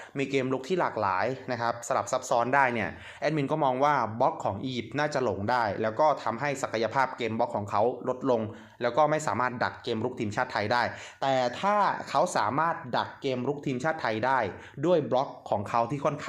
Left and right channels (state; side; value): identical; both; correlation 1.00